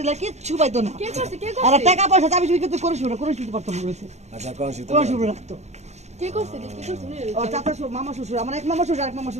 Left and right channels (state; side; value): late; left; 0.32 ms